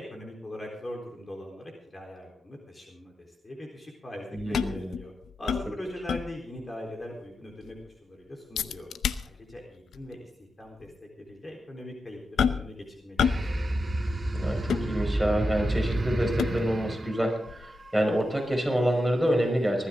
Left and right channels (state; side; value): normal; both; correlation 0.88